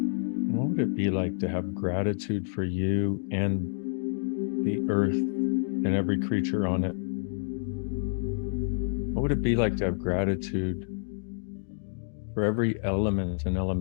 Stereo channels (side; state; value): right; silent; digital silence